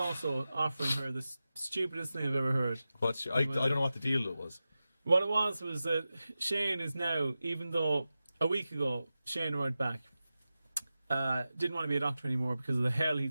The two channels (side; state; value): both; inverted; correlation -0.94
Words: offering her the stupidest thing I've ever heard. I don't know what the deal was. What it was that Shane is now, even though a week ago Shane arrived back, didn't want to be a doctor anymore because of the hell